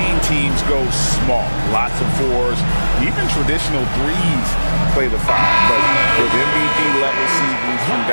teams go small. Lots of 4s, even traditional 3s play the 5. But with MVP-level seasons from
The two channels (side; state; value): both; inverted; correlation -1.00